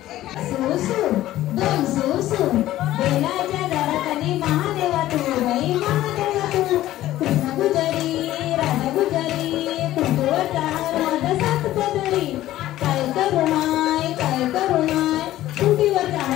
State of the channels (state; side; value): quieter; right; 14.5 dB